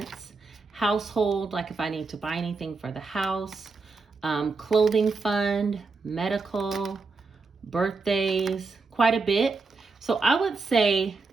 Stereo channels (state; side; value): quieter; left; 4.1 dB